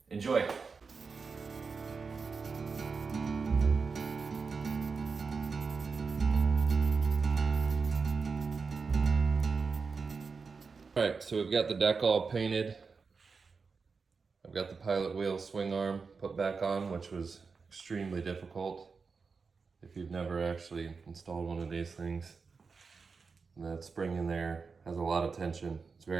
Enjoy. All right, so we've got the deck all painted. I've got the pilot wheel swing arm put back on, which was extremely difficult. If you've never actually installed one of these things, that spring in there has a lot of tension. It's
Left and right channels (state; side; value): quieter; left; 4.9 dB